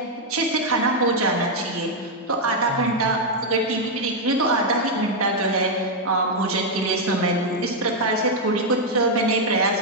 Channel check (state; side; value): normal; both; correlation 0.00